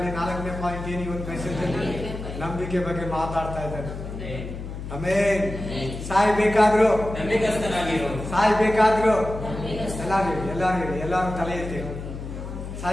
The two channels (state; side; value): noise; left; hum, 8 dB below the sound